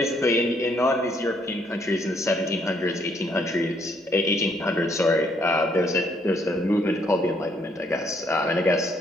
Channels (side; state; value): both; normal; correlation 0.69